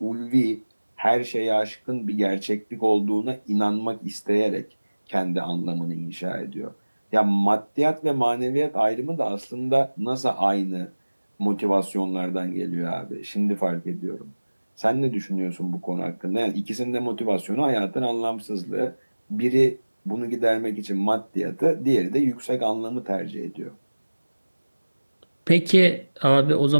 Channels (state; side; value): inverted; both; correlation -1.00